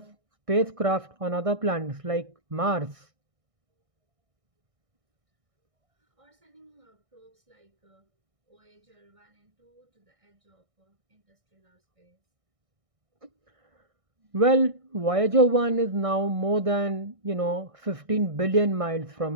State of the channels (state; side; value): late; left; 1.6 ms